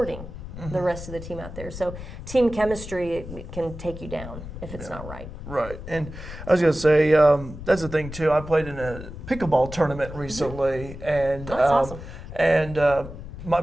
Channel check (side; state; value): left; noise; rumble, 11 dB below the sound